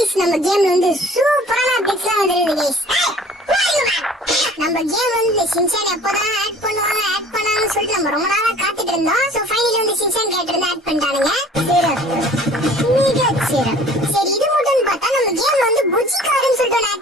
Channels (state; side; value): normal; both; correlation 0.49